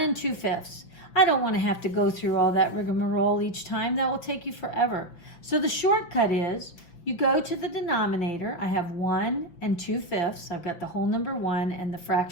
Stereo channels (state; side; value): late; right; 5.9 ms